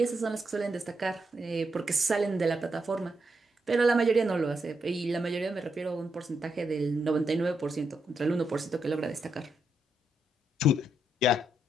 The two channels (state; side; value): normal; both; correlation 0.81